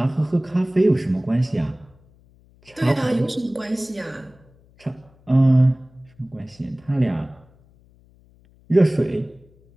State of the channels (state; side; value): noise; left; hum, 30 dB below the sound